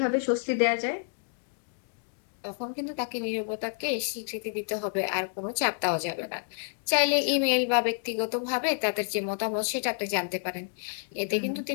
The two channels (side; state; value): right; silent; digital silence